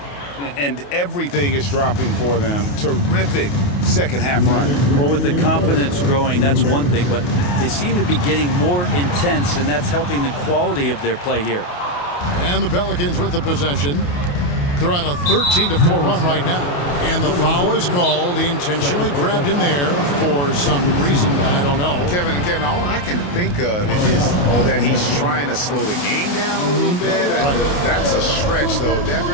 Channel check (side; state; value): right; late; 28 ms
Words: And everything is dropping for them. Terrific second half run. Well, with the confidence growing, that's one thing, but they seem to be getting more intense, and that's helping the quality of their play here. And the Pelicans with the possession. They're on a 13-4 run right now. And the foul is called. He intentionally grabbed him there for some reason. I don't know. Kevin, all I can think of is that he's trying to slow the game down a little bit. Right. That's a stretch, though.